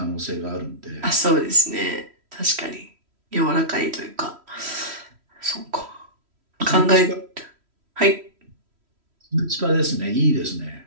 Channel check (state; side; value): late; left; 3.1 ms